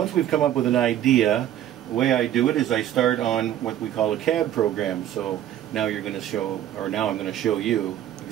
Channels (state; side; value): quieter; left; 11.5 dB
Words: we've come up with an idea, the way I do it is I start on what we call a CAD program. So now I'm going to show you